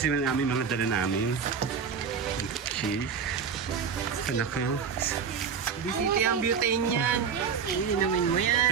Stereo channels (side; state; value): left; quieter; 6.5 dB